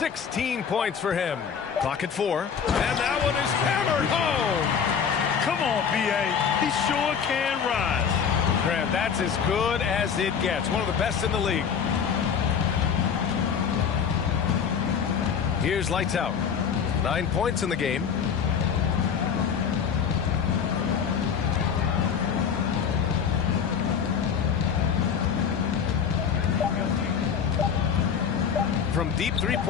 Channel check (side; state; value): right; quieter; 7.1 dB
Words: points for him. Clock at 4. And that one is hammered home. Come on, B.A. He sure can rise. Grant, that's as good as it gets. One of the best in the league. Here's lights out. 9 points in the game. From deep